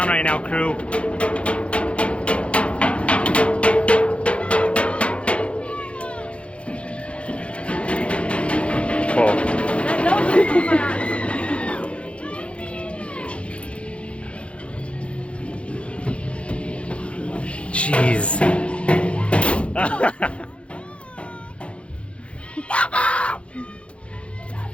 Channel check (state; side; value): late; right; 0.060 ms